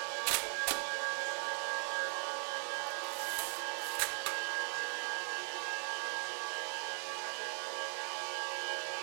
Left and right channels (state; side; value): silent; left; 52 dB below the other